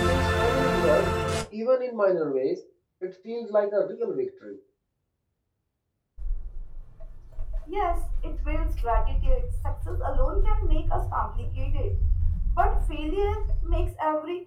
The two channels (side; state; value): both; identical; correlation 1.00